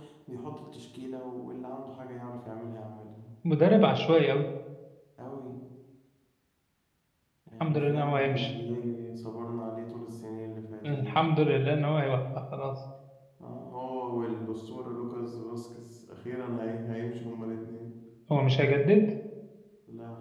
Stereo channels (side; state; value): both; identical; correlation 1.00